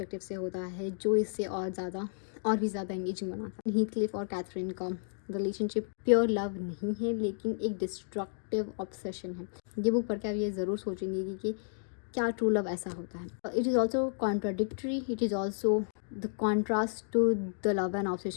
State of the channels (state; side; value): silent; right; digital silence